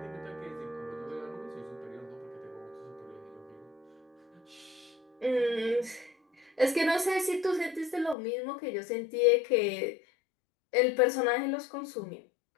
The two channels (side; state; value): right; drops out; at 8.2 s